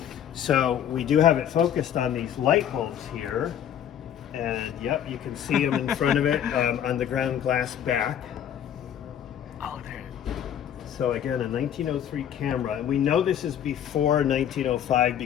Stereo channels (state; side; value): quieter; right; 9.8 dB